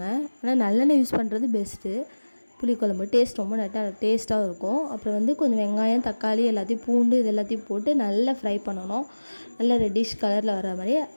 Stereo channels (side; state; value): both; inverted; correlation -1.00